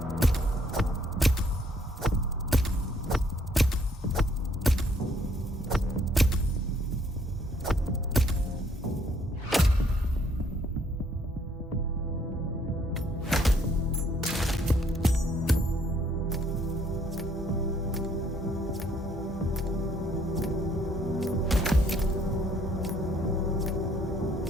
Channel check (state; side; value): normal; both; correlation 0.65